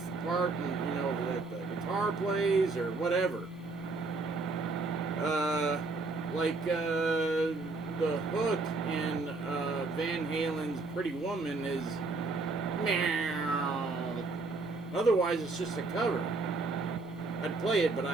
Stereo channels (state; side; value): quieter; left; 3.6 dB